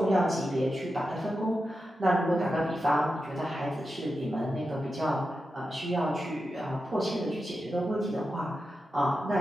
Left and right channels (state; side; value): normal; both; correlation 0.90